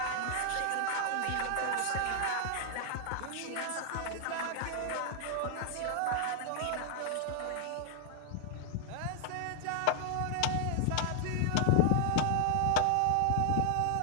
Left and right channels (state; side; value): different; both; correlation -0.01